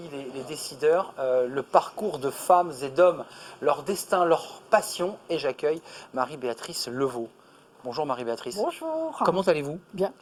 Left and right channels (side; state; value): both; identical; correlation 1.00